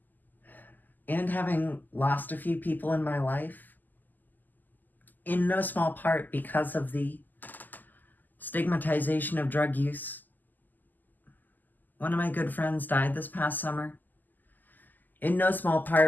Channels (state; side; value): late; right; 0.086 ms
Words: And having lost a few people in my life, in no small part because of the stigmatization of drug use. One of my good friends died this past summer, in no small